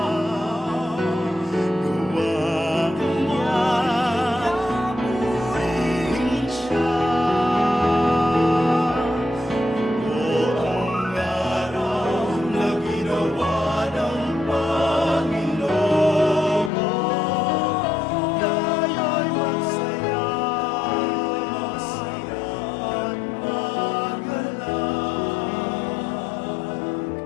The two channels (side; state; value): right; drops out; at 16.7 s